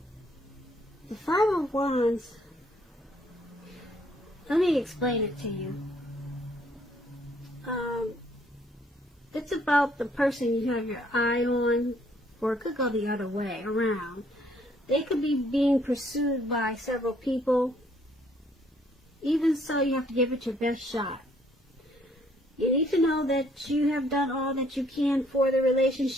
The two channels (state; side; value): normal; both; correlation 0.65